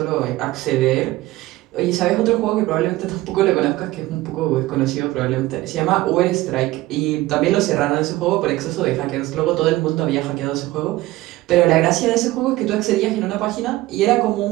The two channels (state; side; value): quieter; left; 17.9 dB